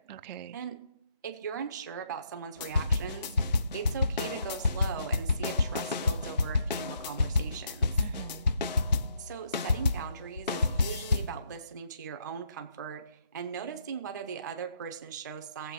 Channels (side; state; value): both; inverted; correlation -0.73